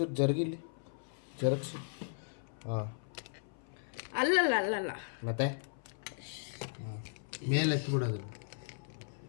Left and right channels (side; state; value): right; silent; 53 dB below the other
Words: ಜರುಗಿಸಿ. ಅಲ್ಲಲ್ಲ ಮತ್ತೆ ಮೇಲೆ ಎತ್ಬಿಡೋದು.